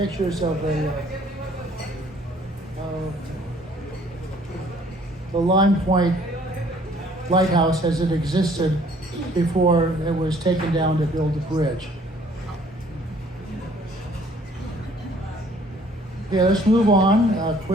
of the Lime Point lighthouse as it existed before it was taken down to build the bridge. Okay, let's move on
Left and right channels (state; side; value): normal; both; correlation 0.59